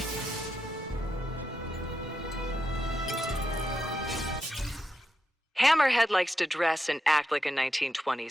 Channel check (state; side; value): normal; both; correlation 0.85